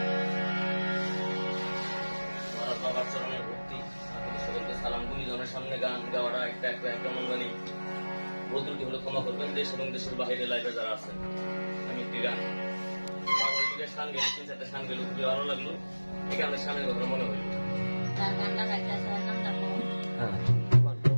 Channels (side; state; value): both; inverted; correlation -1.00